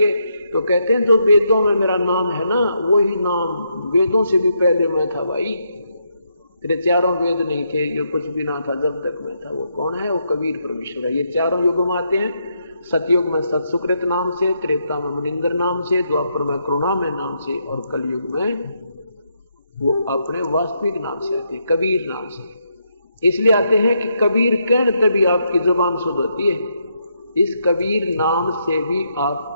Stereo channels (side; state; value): both; inverted; correlation -0.78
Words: तो कहते हैं जो वेदों में मेरा नाम है ना, वही नाम वेदों से भी पहले मैं था भाई। तेरे 4 वेद नहीं थे, जो कुछ भी ना था जब तक मैं था। वो कौन है? वो कबीर परमेश्वर है। ये 4 युग में आते हैं। सतयुग में सतसुकृत नाम से, त्रेता में मुनिंदर नाम से, द्वापर में करुणामय नाम से, और कलयुग में वो अपने वास्तविक नाम से आते हैं, कबीर नाम से। इसलिए आते हैं कि कबीर कहने तभी आपकी जुबान शुद्ध होती है। इस कबीर नाम से भी